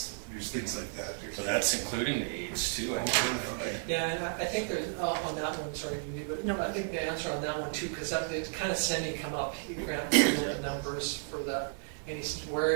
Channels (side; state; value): left; silent; 56 dB below the other